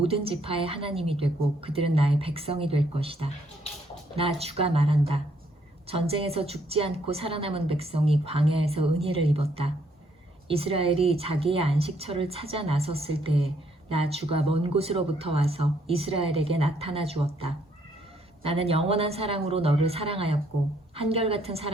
지파의 하나님이 되고 그들은 나의 백성이 될 것이다. 나 주가 말한다. 전쟁에서 죽지 않고 살아남은 백성이 광야에서 은혜를 입었다. 이스라엘이 자기의 안식처를 찾아 나섰을 때에 나 주가 먼 곳으로부터 와서 이스라엘에게 나타나 주었다. 나는 영원한 사랑으로 너를 사랑하였고 한결같은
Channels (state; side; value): normal; both; correlation 0.69